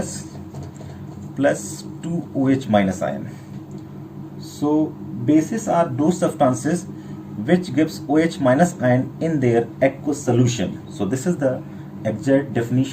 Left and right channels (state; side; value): identical; both; correlation 1.00